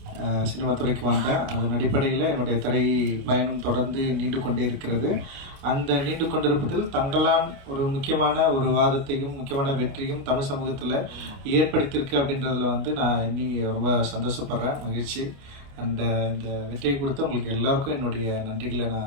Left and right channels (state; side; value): late; left; 29 ms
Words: சினிமா துறைக்கு வந்தேன். அதன் அடிப்படையில் என்னுடைய திரை பயணம் தொடர்ந்து நீண்டு கொண்டே இருக்கிறது. அந்த நீண்டு கொண்டிருப்பதில் தங்களான் ஒரு முக்கியமான ஒரு வாதத்தையும் முக்கியமான வெற்றியும் தமிழ் சமூகத்தில் ஏற்படுத்தியிருக்கு அப்படின்றதுல நான் இன்னி ரொம்ப சந்தோஷப்படுறேன், மகிழ்ச்சி. அண்ட் இந்த வெற்றியை கொடுத்து உங்களுக்கு எல்லாருக்கும் என்னுடைய நன்றிகளை